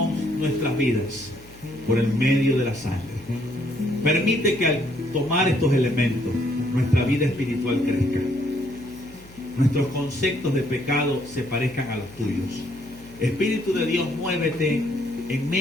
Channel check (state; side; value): noise; left; hum, 23 dB below the sound